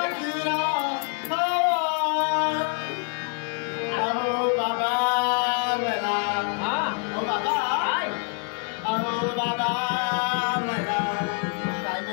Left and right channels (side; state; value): right; quieter; 34.4 dB